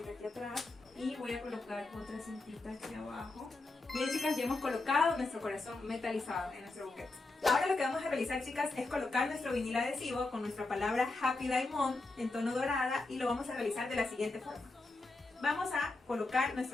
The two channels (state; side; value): quieter; right; 3.2 dB